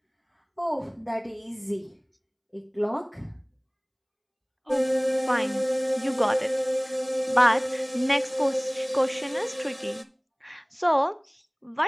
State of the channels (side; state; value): both; identical; correlation 1.00